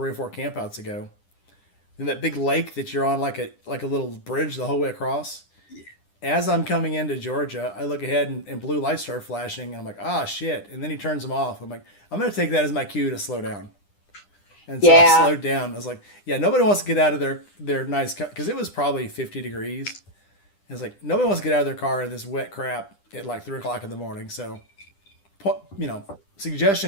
or 4 campouts ago. And that big lake that you're on like a little bridge the whole way across. Yeah. As I'm coming into Georgia, I look ahead and blue lights start flashing. And I'm like, shit. And then he turns them off. I'm like, I'm going to take that as my cue to slow down. And so I slowed down. I was like, yeah, nobody wants to get out of their nice car. Because it was probably 50 degrees. It's like, nobody wants to get out of their car in this wet crap at like 3 o'clock in the morning. So,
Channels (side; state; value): right; late; 9.9 ms